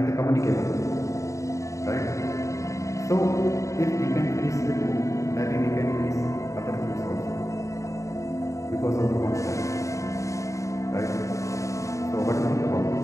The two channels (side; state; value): right; late; 0.15 ms